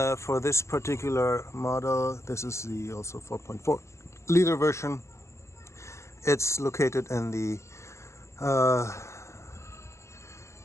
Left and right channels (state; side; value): late; right; 0.13 ms